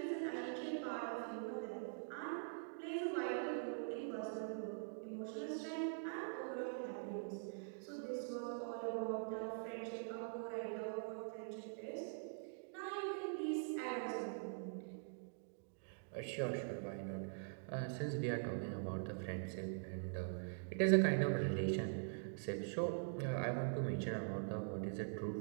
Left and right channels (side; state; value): left; silent; digital silence